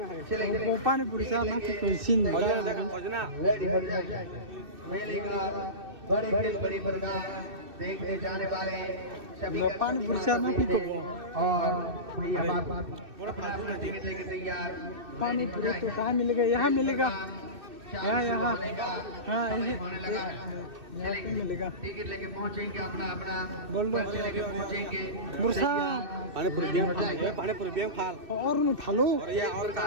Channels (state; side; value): late; left; 2.6 ms